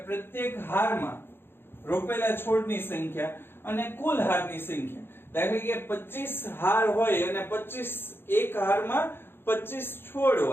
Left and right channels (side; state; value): right; late; 0.11 ms